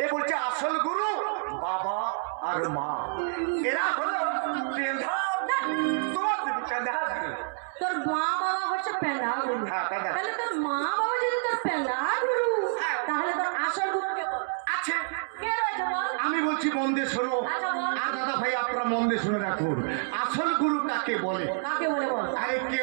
এ বলছে আসল গুরু বাবা আর মা, এরা হলো তোর মা বাবা হচ্ছে পেঁদা গুরু। তাহলে তোর মা বাবা যদি তোর পেঁদা গুরু, তাহলে তোর আসল গুরু কে আছে? কে রয়েছে বল? আমি বলছি মন দিয়ে শোনো। আর দাদা ভাই আপনারা মন দিয়ে শুনে রাখুন, আসল গুরু কাকে বলে? কাকে বলে বল? আরে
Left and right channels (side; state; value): left; silent; 59 dB below the other